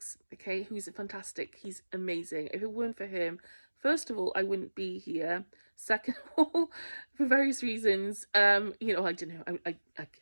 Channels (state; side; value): inverted; both; correlation -1.00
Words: okay, who's fantastic. He's amazing. If it weren't for him, first of all, I wouldn't be here. Second of all, for various reasons, I don't know.